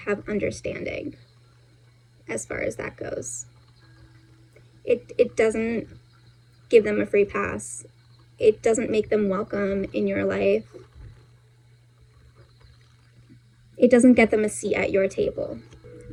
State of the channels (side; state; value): both; identical; correlation 1.00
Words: have understanding as far as that goes. It doesn't give them a free pass. It doesn't make them welcome in your life. It doesn't get them a seat at your table.